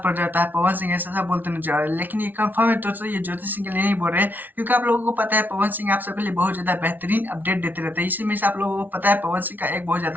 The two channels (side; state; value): left; late; 0.084 ms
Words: पड़ जाता है। पवन सिंह ऐसा बोलते नजर आ रहे हैं, लेकिन ये कंफर्म है तो ये ज्योति सिंह के लिए नहीं बोल रहे, क्योंकि आप लोगों को पता है पवन सिंह आप सबके लिए बहुत ज्यादा बेहतरीन अपडेट देते रहते हैं। इसी में से आप लोगों को पता है पवन सिंह का एक बहुत